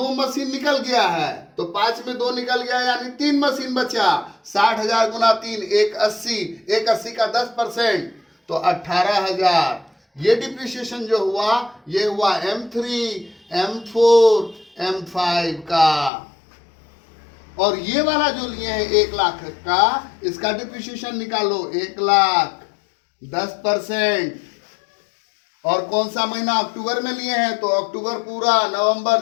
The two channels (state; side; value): drops out; right; at 16.1 s